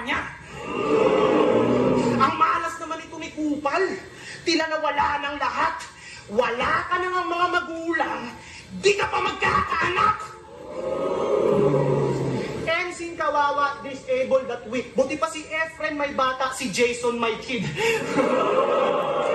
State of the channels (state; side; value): identical; both; correlation 1.00